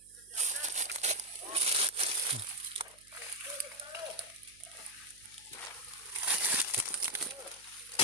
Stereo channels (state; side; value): noise; right; hum, 29 dB below the sound